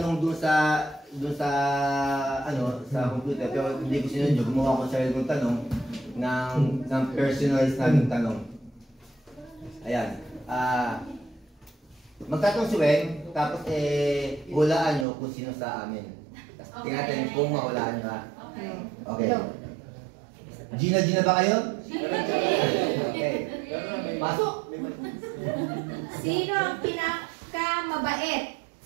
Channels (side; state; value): left; drops out; at 15.1 s